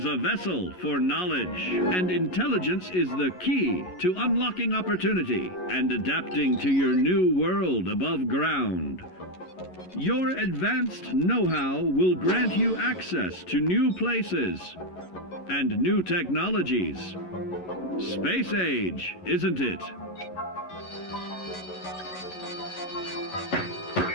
a vessel for knowledge, and intelligence is the key to unlocking opportunity and adapting to your new world above ground. Your advanced know-how will grant you access to new places and new technologies. Space age, isn't it?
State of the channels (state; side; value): late; right; 11 ms